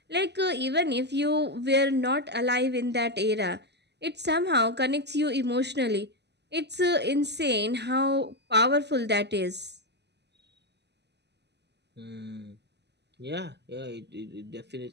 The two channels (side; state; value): left; late; 0.50 ms